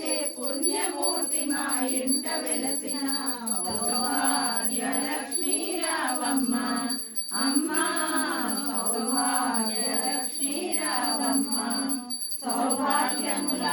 పుణ్యమూర్తి మా ఇంట వెలసిన సౌభాగ్య లక్ష్మీ రావమ్మ అమ్మ సౌభాగ్య లక్ష్మీ రావమ్మ సౌభాగ్యముల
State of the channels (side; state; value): both; identical; correlation 1.00